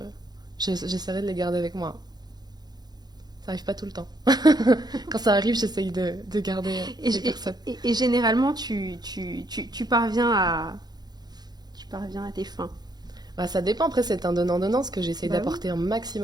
j'essaierai de les garder avec moi. Ça arrive pas tout le temps. Quand ça arrive, j'essaye de garder les personnes. Et généralement, tu parviens à tes fins. Bah, ça dépend, après c'est un donnant-donnant, parce que j'essaye Bah d'apporter un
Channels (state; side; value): late; left; 0.20 ms